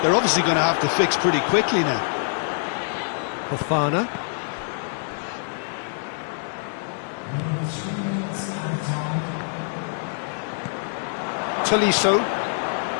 obviously going to have to fix pretty quickly now. Fofana. Tolisso.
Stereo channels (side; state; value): right; silent; digital silence